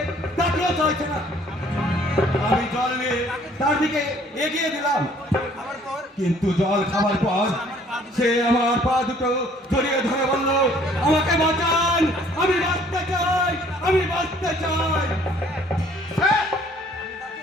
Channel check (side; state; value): both; normal; correlation 0.58